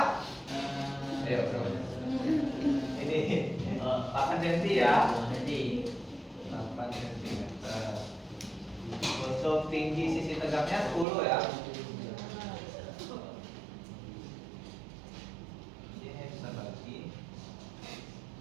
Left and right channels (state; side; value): drops out; left; at 11.1 s